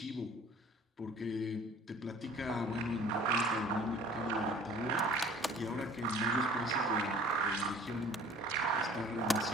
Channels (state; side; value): normal; both; correlation 0.48